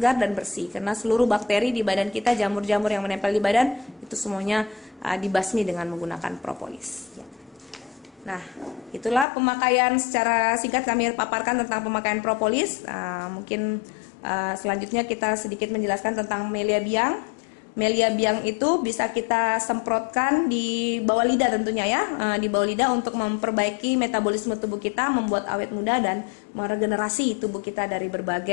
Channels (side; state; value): right; drops out; at 9.2 s